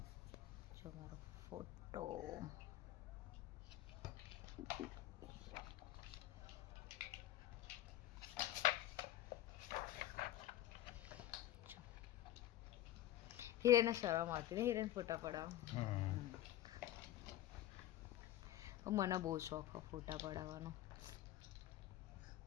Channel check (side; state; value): right; quieter; 13.3 dB